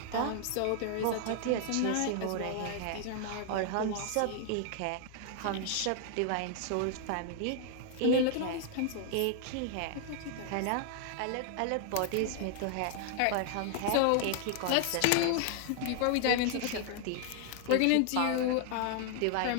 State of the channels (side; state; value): both; different; correlation 0.00